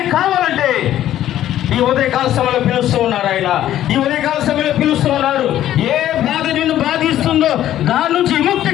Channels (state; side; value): quieter; right; 12.4 dB